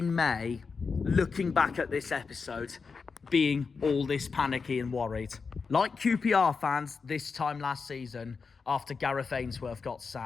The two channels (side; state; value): right; quieter; 5.1 dB